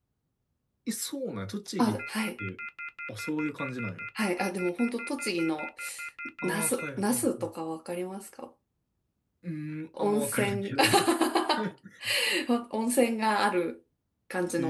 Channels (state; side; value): identical; both; correlation 1.00